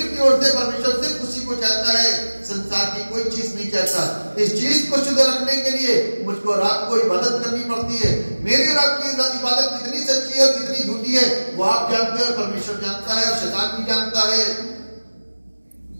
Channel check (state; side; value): inverted; both; correlation -1.00